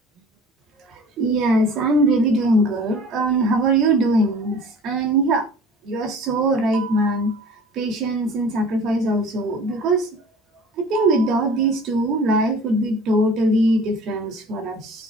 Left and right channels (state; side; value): normal; both; correlation 0.45